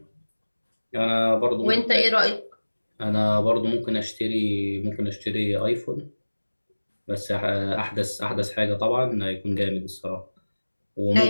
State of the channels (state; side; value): inverted; both; correlation -1.00